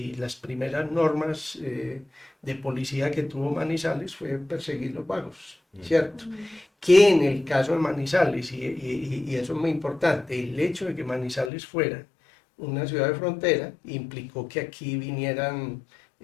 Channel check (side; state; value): right; drops out; at 11.5 s